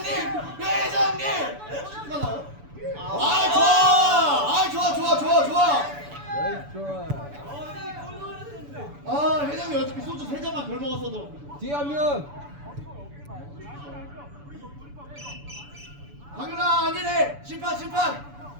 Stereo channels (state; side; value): late; left; 7.0 ms